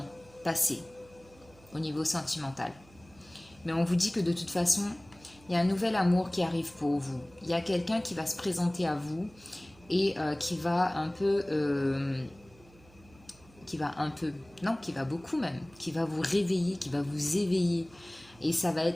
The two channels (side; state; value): right; noise; hum, 26 dB below the sound